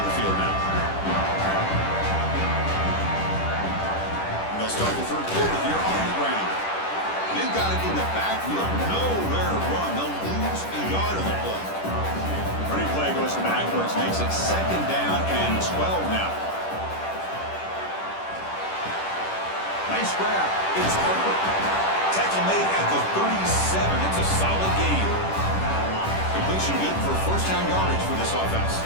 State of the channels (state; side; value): late; right; 10 ms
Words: the field now. And they'll start the third quarter here on the ground. They've got it in the backfield. Nowhere to run. They'll lose a yard on the play. Running play goes backwards. Makes it second down and 12 now. Nice grab. It's Harper. Tackle made at the 37. It's a solid gain. Completion good for first down yardage for this offense.